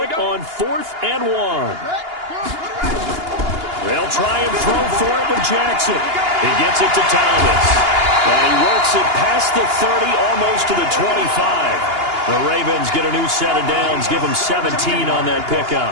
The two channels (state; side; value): late; left; 2.8 ms